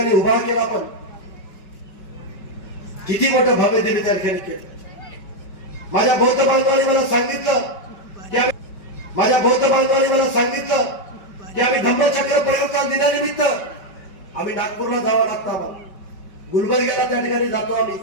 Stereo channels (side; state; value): right; late; 5.1 ms